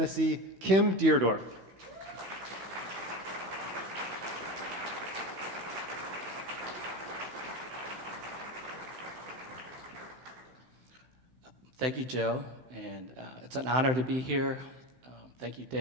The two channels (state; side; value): late; left; 16 ms